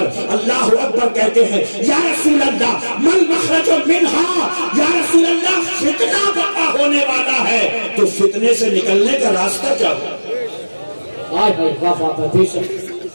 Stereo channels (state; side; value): inverted; both; correlation -1.00